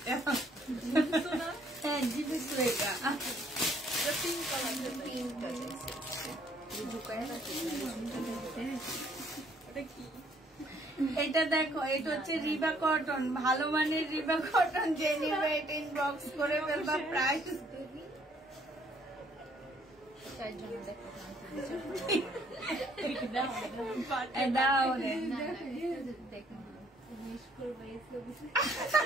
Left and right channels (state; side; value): normal; both; correlation 0.64